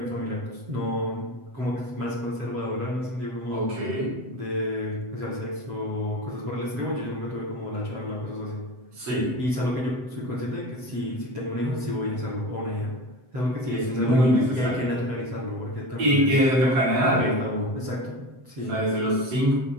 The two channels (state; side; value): late; left; 7.9 ms